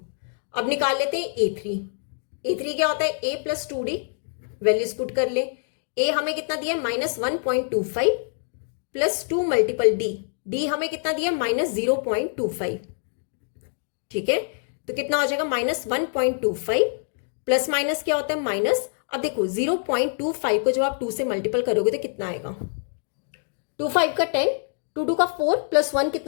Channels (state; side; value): silent; right; digital silence